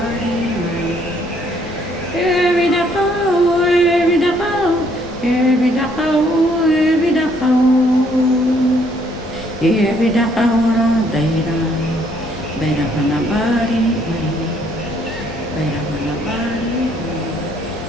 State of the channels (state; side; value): normal; both; correlation 0.66